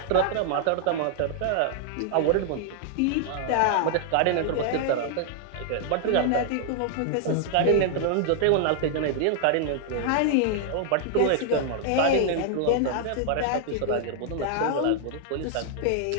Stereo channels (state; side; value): different; both; correlation 0.00